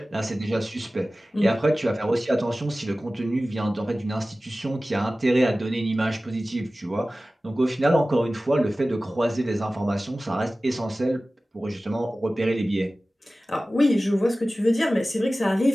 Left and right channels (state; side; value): normal; both; correlation 0.97